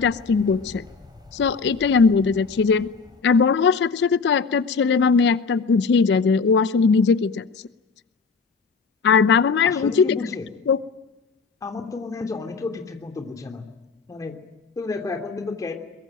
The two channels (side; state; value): right; quieter; 4.9 dB